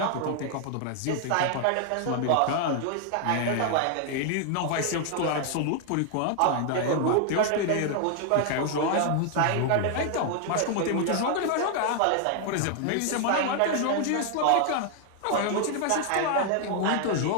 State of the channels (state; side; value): different; both; correlation 0.00